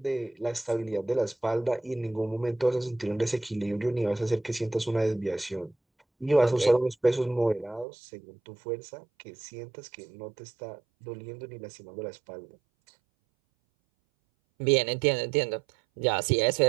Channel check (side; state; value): left; drops out; at 7.9 s